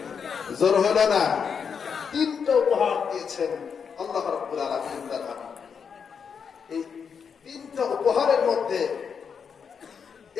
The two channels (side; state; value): right; quieter; 6.5 dB